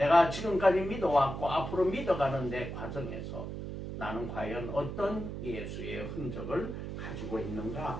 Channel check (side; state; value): right; noise; hum, 6 dB below the sound